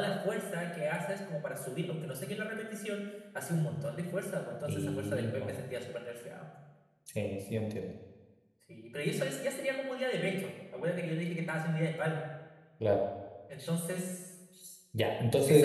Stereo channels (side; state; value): both; identical; correlation 1.00